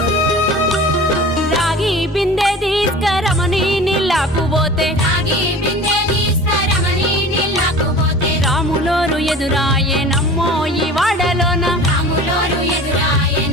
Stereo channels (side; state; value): both; normal; correlation 0.39